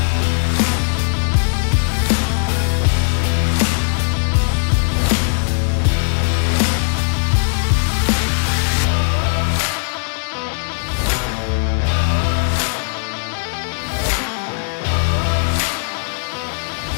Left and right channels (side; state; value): right; silent; digital silence